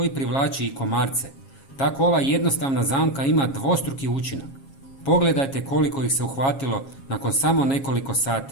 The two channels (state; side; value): late; right; 7.4 ms